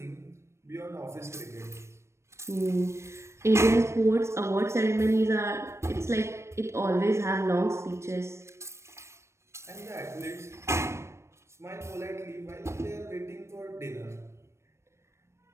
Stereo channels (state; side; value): late; left; 0.13 ms